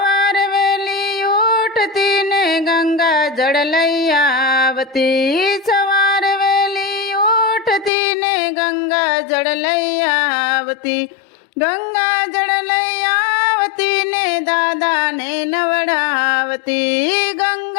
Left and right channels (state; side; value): drops out; right; at 7.9 s